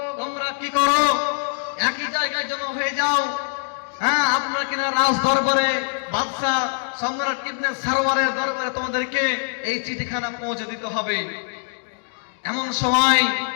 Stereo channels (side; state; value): right; silent; digital silence